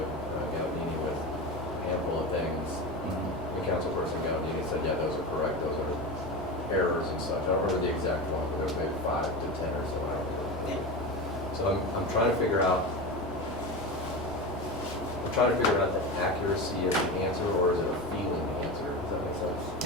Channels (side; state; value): both; normal; correlation 0.24